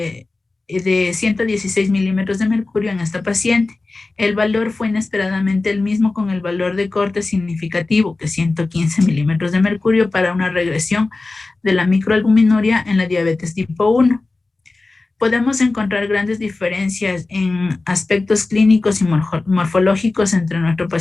116 milímetros de mercurio en esta paciente. El valor fue inesperadamente el mismo con el valor de corte significativo, que 115 milímetros de mercurio, para una regresión de la microalbuminuria en la diabetes tipo 1. Podemos encontrar grandes diferencias en aspectos clínicos y morfológicos entre nuestro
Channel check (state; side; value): quieter; right; 3.4 dB